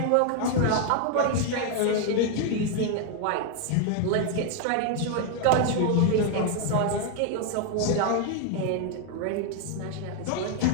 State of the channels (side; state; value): both; different; correlation 0.00